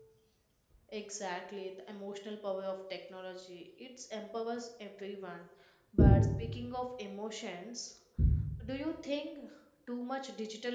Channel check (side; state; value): both; identical; correlation 1.00